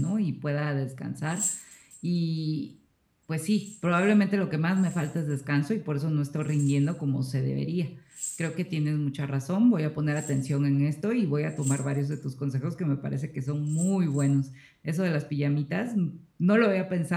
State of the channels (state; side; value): identical; both; correlation 1.00